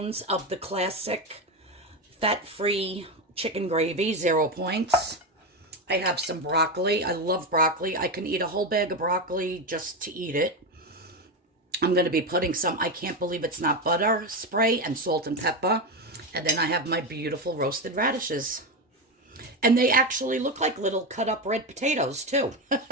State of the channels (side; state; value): both; normal; correlation 0.14